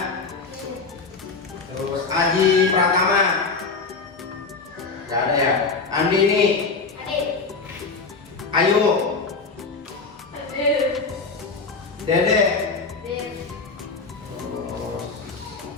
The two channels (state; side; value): quieter; right; 4.3 dB